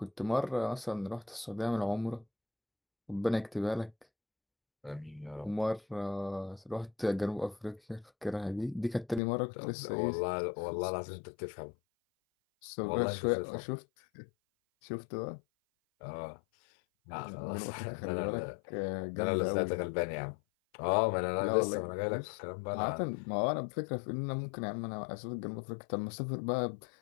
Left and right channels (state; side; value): drops out; right; at 9.2 s